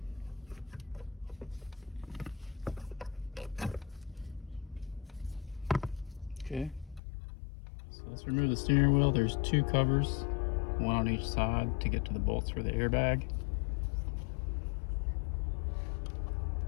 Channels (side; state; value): right; drops out; at 7.0 s